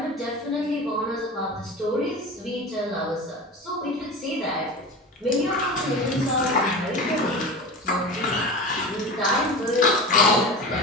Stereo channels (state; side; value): normal; both; correlation 0.30